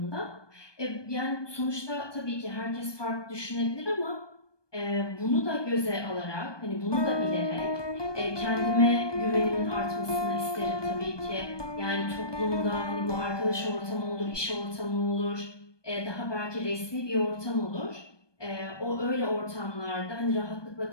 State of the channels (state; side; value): late; right; 1.2 ms